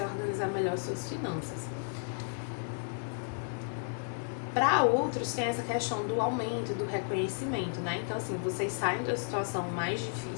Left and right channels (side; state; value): right; silent; digital silence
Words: organizar melhor suas finanças. Para outros, tem essa questão do aumento, do reconhecimento, né? Então, assim, vocês saem da situação mais